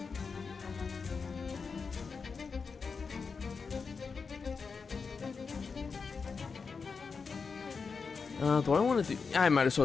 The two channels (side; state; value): right; quieter; 5.1 dB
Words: Do I want to do... I might as